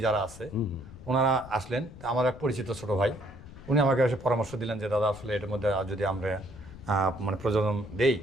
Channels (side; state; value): left; noise; rumble, 17 dB below the sound